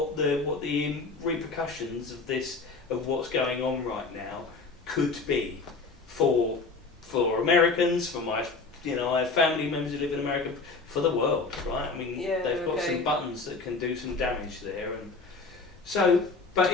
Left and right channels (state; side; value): quieter; right; 4.0 dB